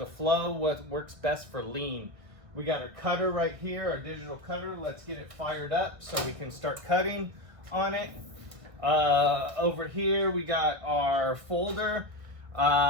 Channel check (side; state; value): left; late; 1.4 ms